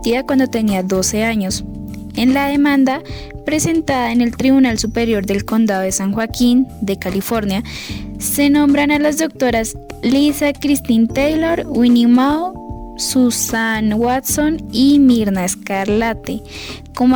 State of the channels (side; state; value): both; identical; correlation 1.00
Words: cuando tenía 12 años. En la demanda presentada en el Tribunal Superior del Condado de San Joaquín, de California, se nombran a las doctoras Lisa Christine Taylor, Winnie Mao, Susan Watson y Mirna Scarlatti como